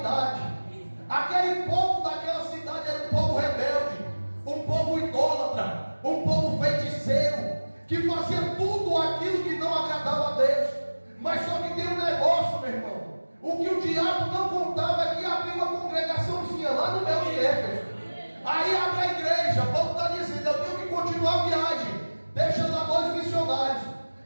Aquele povo daquela cidade era um povo rebelde, um povo idólatra, um povo feiticeiro, que fazia tudo aquilo que não agradava a Deus. Mas só que tem um negócio, meu irmão: o que o diabo não contava é que havia uma congregaçãozinha lá no meio de Éfeso. Aí abre a igreja. Paulo está dizendo: eu tenho que continuar a viagem, deixa lá dois missionários.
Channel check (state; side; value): inverted; both; correlation -1.00